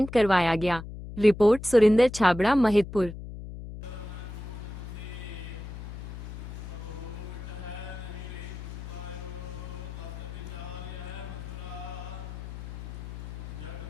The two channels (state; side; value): noise; left; hum, 10 dB below the sound